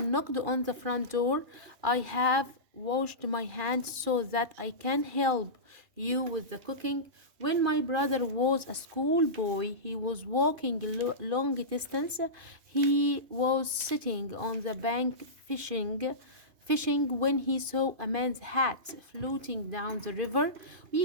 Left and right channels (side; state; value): left; late; 2.5 ms